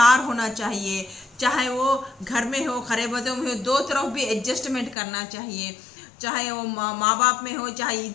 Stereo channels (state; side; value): drops out; right; at 5.0 s